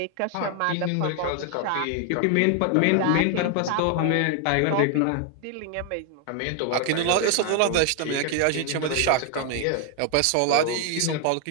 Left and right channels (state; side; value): different; both; correlation 0.00